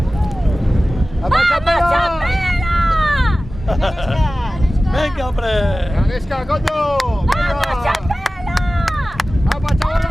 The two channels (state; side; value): normal; both; correlation 0.96